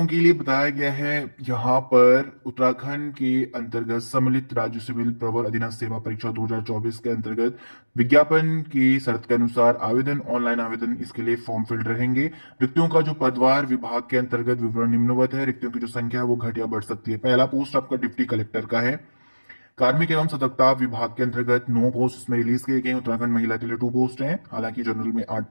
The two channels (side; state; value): both; inverted; correlation -1.00